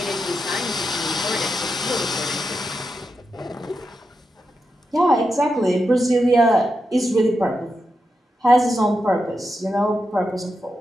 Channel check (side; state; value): both; normal; correlation 0.87